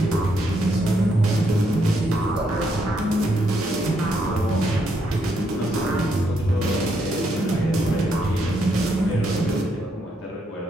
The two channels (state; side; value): normal; both; correlation 0.76